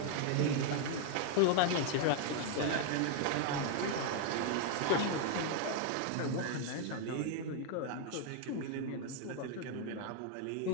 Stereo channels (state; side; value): different; both; correlation 0.00